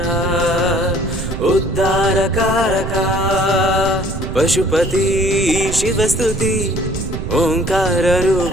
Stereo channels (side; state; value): right; noise; rumble, 6 dB below the sound